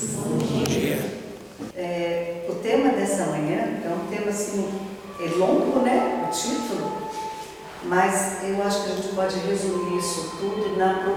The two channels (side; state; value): both; identical; correlation 1.00